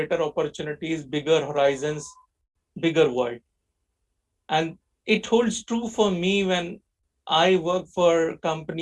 opportunities, bigger horizons, bigger world. And it holds true for me when I work for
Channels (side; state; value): both; identical; correlation 1.00